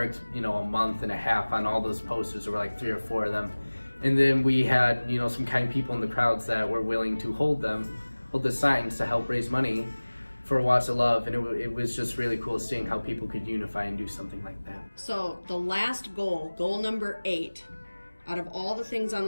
a month and a half on all those posters. There were like 3 or 4 of them, and then we had some kind people in the crowds that were willing to hold the signs to help raise money for Watts of Love, and it was just really cool seeing how people could unify and do something like that. So the last goal number 8, out of all the things on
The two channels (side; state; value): both; inverted; correlation -1.00